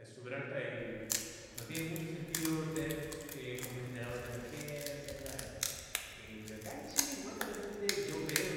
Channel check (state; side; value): identical; both; correlation 1.00